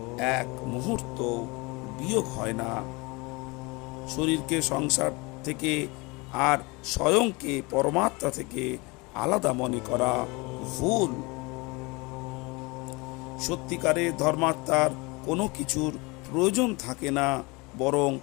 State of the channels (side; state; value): right; quieter; 26.0 dB